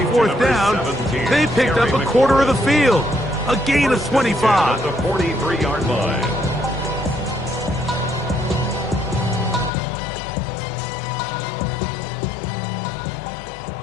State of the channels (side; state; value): right; drops out; at 9.7 s